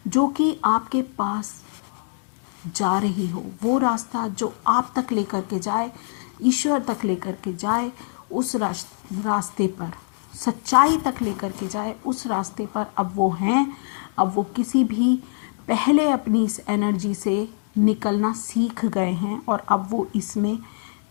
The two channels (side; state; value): right; silent; digital silence